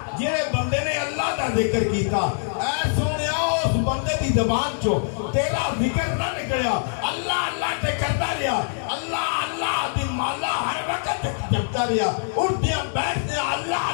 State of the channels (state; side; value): silent; right; 63 dB below the other